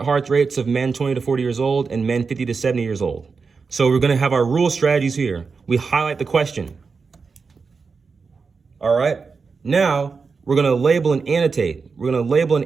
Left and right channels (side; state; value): left; quieter; 4.9 dB